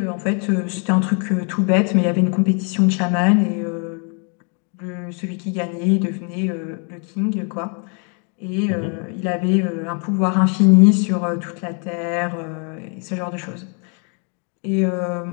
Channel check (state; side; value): quieter; right; 38.6 dB